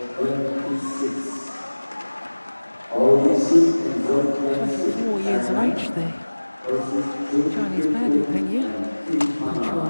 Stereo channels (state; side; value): inverted; both; correlation -1.00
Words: 26. OSIM World 24 years of age there. Chinese pair, Peng Yu.